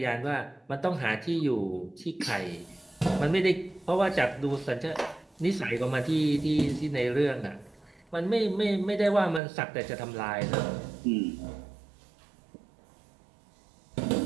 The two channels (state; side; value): drops out; left; at 9.4 s